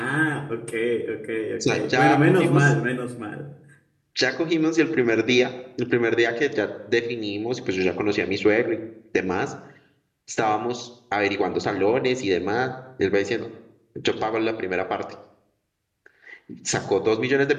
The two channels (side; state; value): both; identical; correlation 1.00